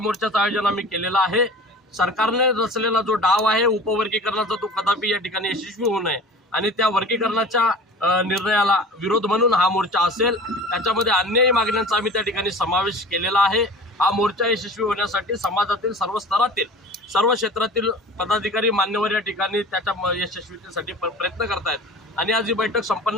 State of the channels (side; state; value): both; normal; correlation 0.39